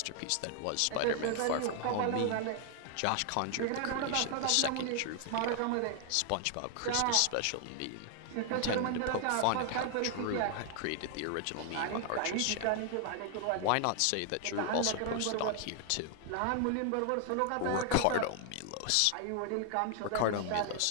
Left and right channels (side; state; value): both; different; correlation 0.00